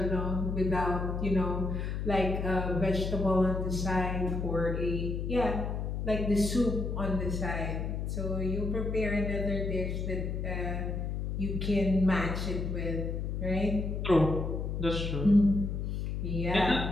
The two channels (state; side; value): noise; left; hum, 2 dB below the sound